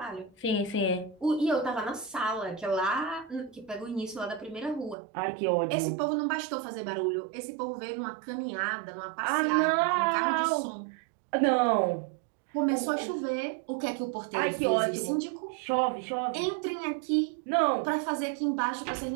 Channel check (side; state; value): left; drops out; at 5.0 s